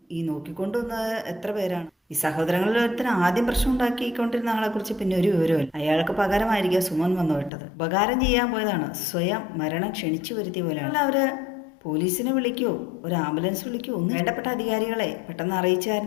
ഈ നോക്കിക്കൊണ്ടുവന്നത് എത്ര പേരാണ്? ഈ സഹോദരങ്ങളിൽ ഒരുത്തിന് ആദ്യം പ്രശ്നം ഉണ്ടാക്കിക്കൊണ്ടിരുന്ന ആളെക്കുറിച്ച് പിന്നെ ഒരു വിവരമില്ല. അയാൾക്ക് പകരമായിരിക്കും സുമൻ വന്നു വിട്ടത്. ഉപകാരം ചെയ്യാൻ പോയതാണ്, സ്വയം മരണം ക്ഷണിച്ചു വരുത്തിയ പോലെയാണ്. അവര് പോലീസിനെ വിളിക്കുമോ ഒരു ആംബുലൻസ് വിളിക്കുമോ ഒന്നും വേണ്ടപ്പെട്ട അധികാരികളെ പെട്ടെന്ന്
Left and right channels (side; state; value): right; drops out; at 7.5 s